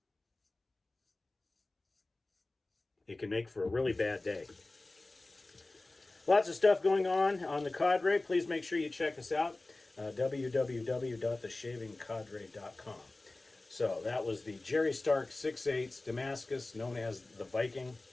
It can make for a really bad day. Lots of stuff going on the Cadre. Please make sure you check us out. www.theshavingcadre.com. So that was the Jerry Stark 6/8 Damascus, known as the Viking.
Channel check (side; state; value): right; quieter; 3.0 dB